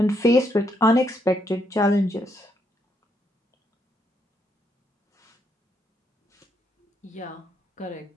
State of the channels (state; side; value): normal; both; correlation 0.76